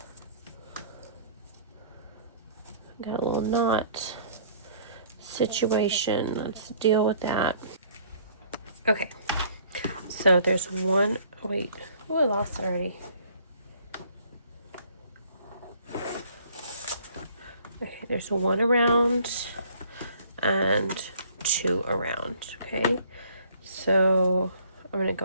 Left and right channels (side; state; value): both; inverted; correlation -0.57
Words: Got a little knot situation. Let's deal with that. Okay, so there's one, wait, oh, I lost it already. Okay, there's one around and two around, okay? So I'm gonna